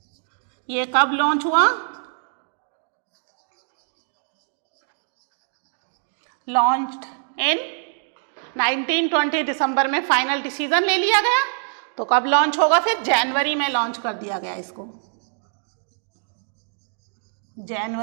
ये कब लॉन्च हुआ, लॉन्च्ड इन 1920 दिसंबर में फाइनल डिसीजन ले लिया गया। तो कब लॉन्च होगा, फिर जनवरी में लॉन्च कर दिया गया इसको,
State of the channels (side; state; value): left; silent; digital silence